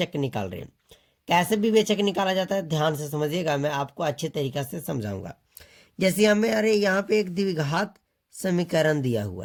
निकाल रहे हैं। कैसे विवेचक निकाला जाता है ध्यान से समझिएगा, मैं आपको अच्छे तरीक़े से समझाऊंगा। जैसे हमें यहाँ पे एक द्विघात समीकरण दिया हुआ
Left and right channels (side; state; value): both; identical; correlation 1.00